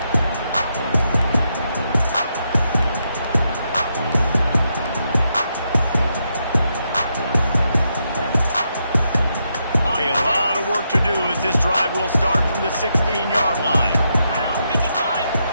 To do as this drive will start from the 16-yard line.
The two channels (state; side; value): inverted; both; correlation -0.81